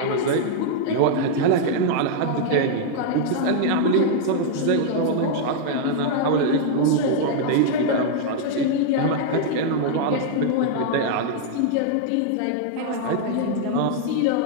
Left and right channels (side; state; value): both; different; correlation -0.01